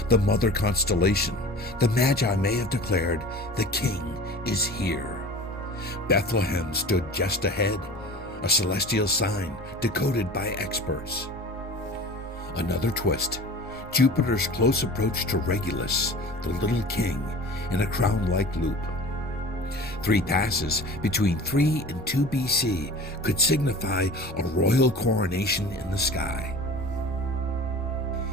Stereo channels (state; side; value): normal; both; correlation 0.39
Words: the mother constellation, the Magi may have declared, "The king is here." Bethlehem stood just ahead, a celestial sign decoded by experts. Another twist, Jupiter's close approach to Regulus, the little king, in a crown-like loop. 3 passes between 3 and 2 BC could signify a royal coronation in the sky.